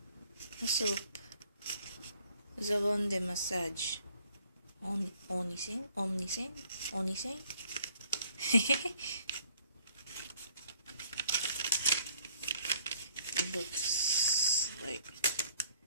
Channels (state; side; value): inverted; both; correlation -0.61